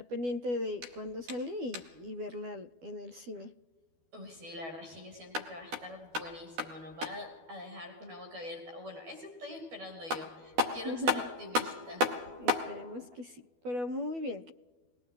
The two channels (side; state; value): left; late; 12 ms